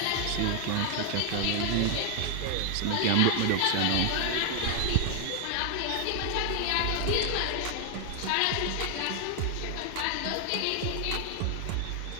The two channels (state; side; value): different; both; correlation 0.00